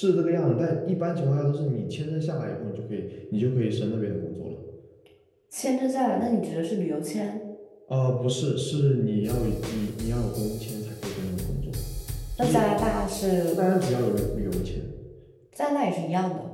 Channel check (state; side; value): identical; both; correlation 1.00